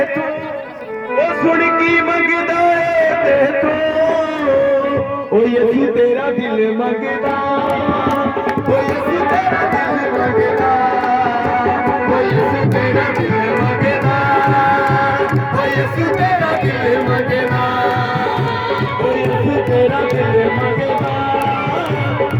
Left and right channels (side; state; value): both; identical; correlation 1.00